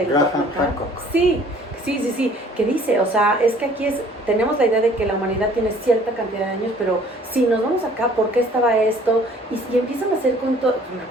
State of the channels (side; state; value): both; normal; correlation 0.55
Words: Graham Hancock. Sí, que dice, o sea, es que aquí tenemos la idea de que la humanidad tiene cierta cantidad de años, pero si nos vamos acá, ¿por qué estaba esto? Y empiezan a hacer con